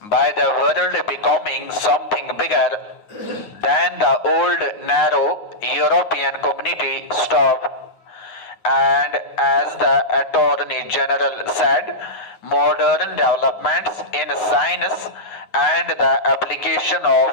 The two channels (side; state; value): right; late; 9.5 ms